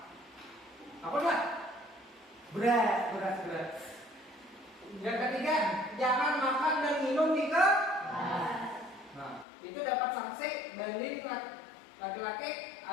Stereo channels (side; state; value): right; drops out; at 9.5 s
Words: Apa enggak? Berat. Yang ketiga, jangan makan dan minum di kelas. Nah, itu dapat sanksi banding laki-laki